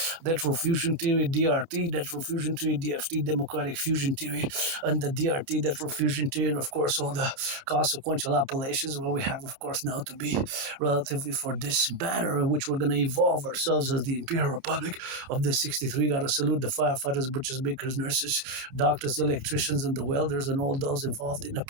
lateral fusion theory, DRT, lateral fusion theory, DFT, democratic fusion theory, and the DRT, lateral fusion theory, and of course all the consequential appellations where we have, of course, now to be relatively for this banner in which we're going to evolve ourselves as the Imperial Republic of the 63. Got to salute the firefighters, butchers, bakers, nurses, doctors, electricians, and the welders, and all those involved in the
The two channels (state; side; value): late; left; 29 ms